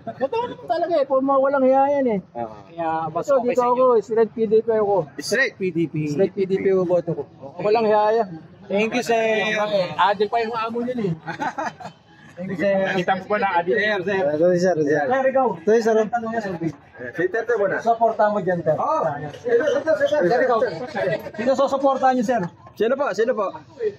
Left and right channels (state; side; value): identical; both; correlation 1.00